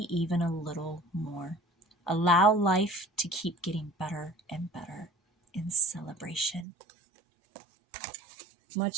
even a little more. Allow life to keep getting better and better in celebration.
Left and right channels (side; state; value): left; drops out; at 6.7 s